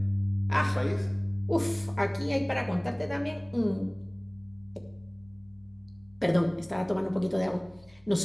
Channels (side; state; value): right; noise; rumble, 30 dB below the sound